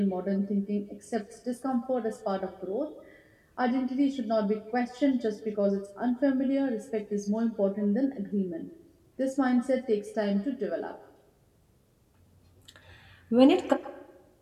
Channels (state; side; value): identical; both; correlation 1.00